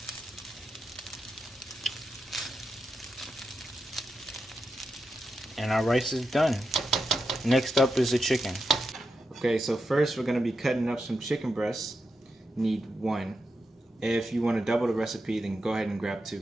And our rice is done. Next up is the chicken. Okay, so first we're going to be cutting up some chicken breasts. Need 1. If you want to double the recipe, then go ahead and grab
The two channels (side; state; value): both; normal; correlation 0.87